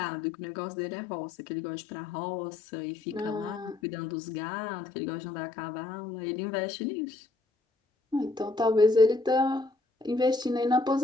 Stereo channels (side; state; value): right; quieter; 3.3 dB